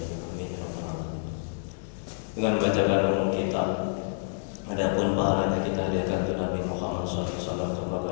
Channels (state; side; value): silent; right; digital silence